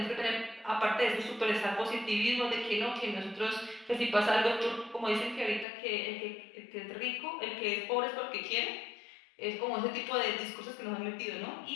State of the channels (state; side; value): drops out; right; at 5.7 s